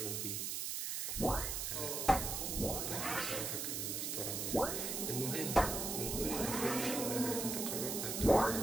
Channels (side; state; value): right; noise; hiss, 2 dB below the sound